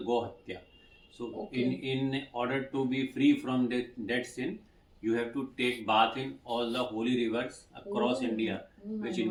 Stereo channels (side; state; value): both; identical; correlation 1.00